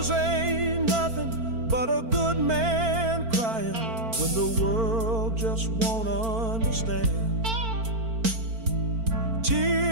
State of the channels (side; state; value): left; late; 4.4 ms